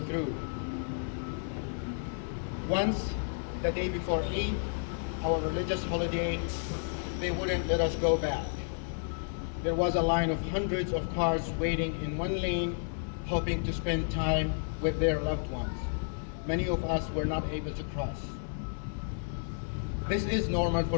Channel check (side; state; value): right; silent; digital silence